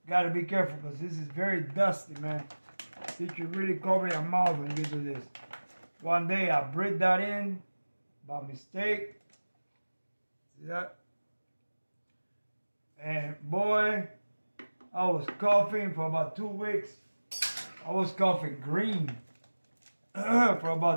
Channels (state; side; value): inverted; both; correlation -1.00